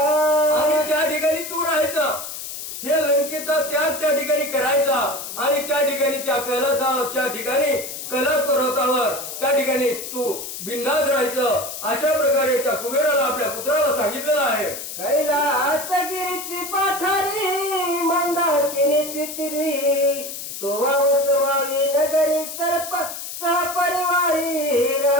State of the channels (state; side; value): noise; left; hiss, 8 dB below the sound